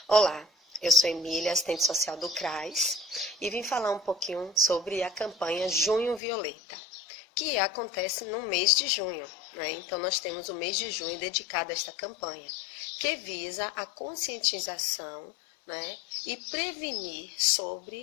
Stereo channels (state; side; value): drops out; right; at 6.2 s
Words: Olá, eu sou Emília, assistente social do CRAS, e vim falar um pouquinho sobre a campanha Junho Violeta, que acontece no mês de junho, né? Então nós temos o mês de junho dedicado a esta campanha, que visa a conscientização, né, e prevenir